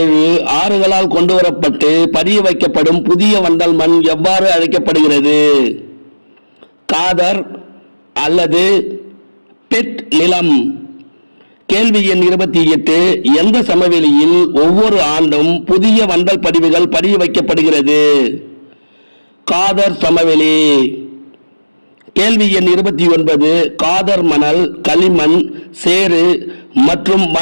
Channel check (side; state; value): both; inverted; correlation -1.00